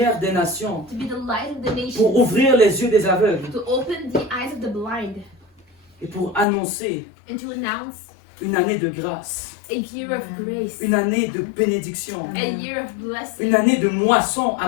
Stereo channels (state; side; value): drops out; right; at 6.5 s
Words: des nations, to be the light of the pour nations, ouvrir les yeux des aveugles to open the eyes of the blind, et pour annoncer and to announce une année de grâce, a year of grace, une année de bénédiction, a year of blessing, une année de moisson